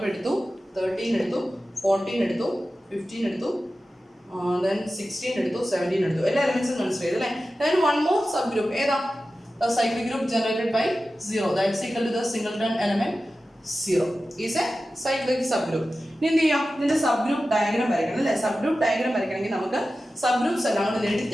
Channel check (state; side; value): normal; both; correlation 0.94